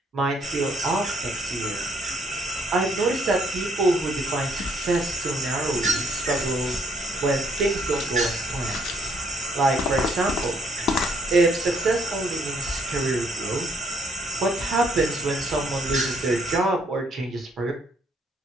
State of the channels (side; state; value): both; normal; correlation 0.67